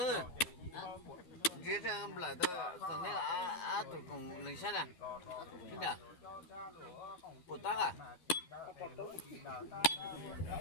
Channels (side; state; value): right; late; 12 ms